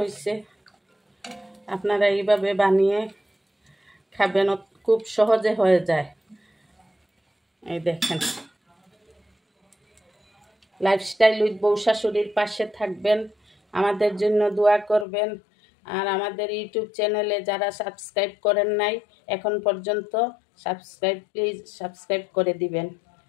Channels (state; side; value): drops out; right; at 15.1 s